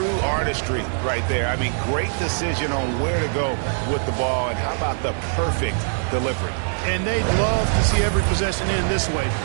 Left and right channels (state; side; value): silent; left; digital silence